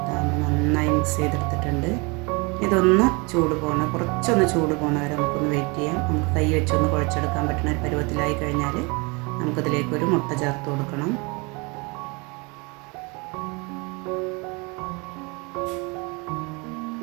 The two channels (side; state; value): left; quieter; 28.7 dB